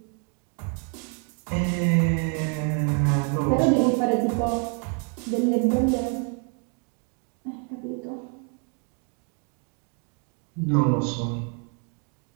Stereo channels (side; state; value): left; quieter; 38.9 dB